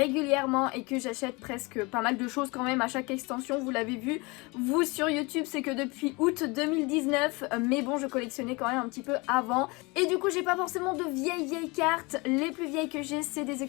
et que j'achète presque pas mal de choses quand même à chaque extension. Vous l'avez vu vous sur YouTube, c'est que depuis août 2019, mais bon je collectionnais quand même un petit peu avant et du coup j'ai pas forcément de vieilles cartes. Les plus vieilles que j'ai, c'est des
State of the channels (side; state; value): right; quieter; 26.2 dB